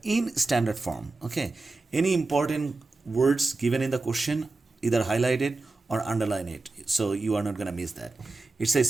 in standard form. Okay, any important words given in the question, either highlight it or underline it, so you are not going to miss that. It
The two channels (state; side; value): quieter; left; 3.5 dB